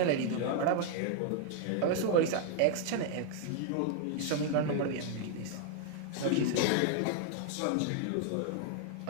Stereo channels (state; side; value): different; both; correlation 0.00